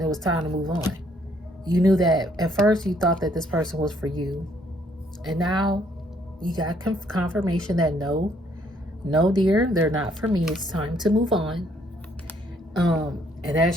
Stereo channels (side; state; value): both; normal; correlation 0.67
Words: it was time to move on. You knew that at first you thought that this person was for you. And now you got confirmation that no, dear, they're not for me. It's time to move on. And